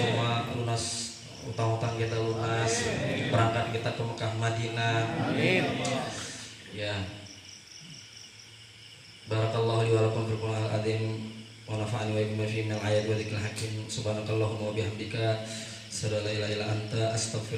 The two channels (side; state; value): both; identical; correlation 1.00